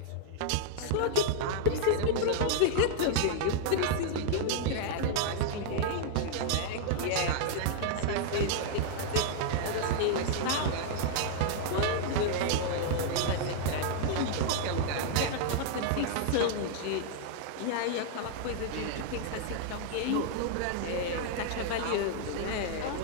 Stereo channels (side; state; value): both; different; correlation -0.01